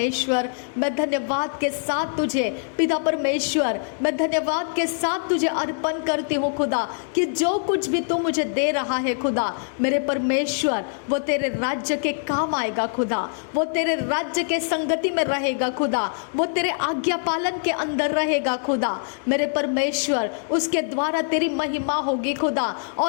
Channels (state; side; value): silent; right; digital silence